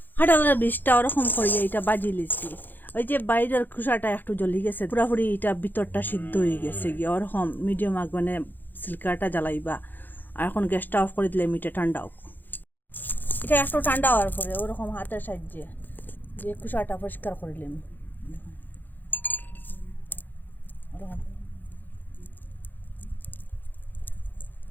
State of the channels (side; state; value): right; late; 0.088 ms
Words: কাঁঠালের বীজটা ওরকম করিয়ে এটা বাজি লিছি। ওই যে বাইরের খোসাটা একটু জ্বলি গেছে, পুরাপুরি এটা ভিতরটা সিদ্ধ হয়ে গেছে গিয়ে ওরকম মিডিয়াম আগুনে সিল্কাটা জ্বালাইবা। আর এখন গ্যাসটা অফ করে দিলে মিটে ঠান্ডা হোক। এটা একটু ঠান্ডা হওয়ার পরে ওরকম হাতের সাহায্যে যে খোসাটা পরিষ্কার করিলাম, ওরকম